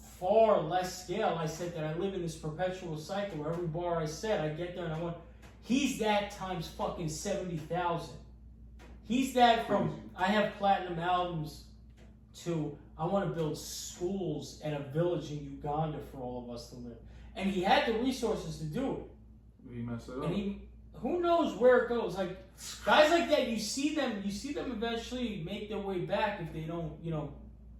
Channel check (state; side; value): identical; both; correlation 1.00